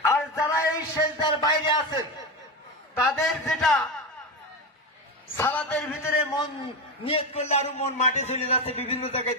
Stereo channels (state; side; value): normal; both; correlation 0.17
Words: আর যারা এই সেজদার বাইরে আছেন তাদের যেটা সালাতের ভিতরে মন নিয়ত করলে আরো মন মাঠে চলে যাচ্ছে, বিভিন্ন জায়গায়